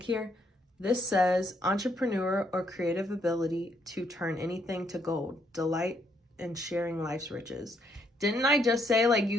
here. This says entrepreneur or creative ability to turn anything to gold, delight in sharing life's riches. Didn't I just say, like,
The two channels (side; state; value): both; normal; correlation 0.72